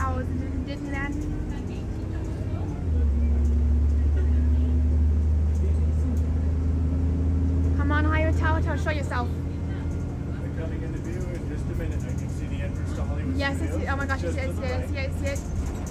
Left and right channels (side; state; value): both; identical; correlation 1.00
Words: in Disneyland. Come on, Hollywood Tower, show yourself. We're coming into view in just a minute. I can see the entrance to Hollywood Yes, Studios. oh my gosh, Just I to the right. see it.